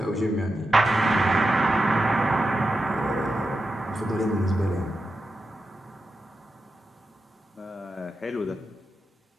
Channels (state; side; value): normal; both; correlation 0.89